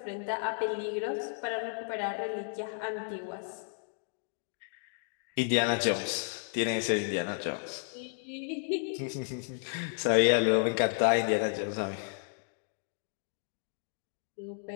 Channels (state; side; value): silent; right; 56 dB below the other